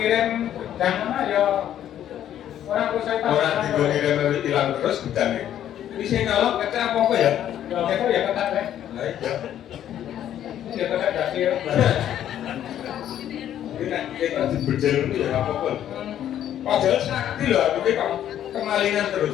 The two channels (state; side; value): quieter; right; 10.9 dB